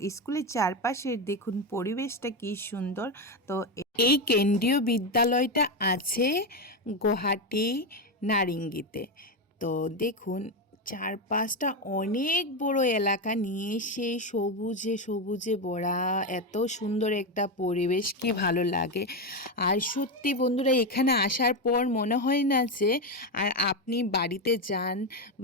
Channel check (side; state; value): both; normal; correlation 0.11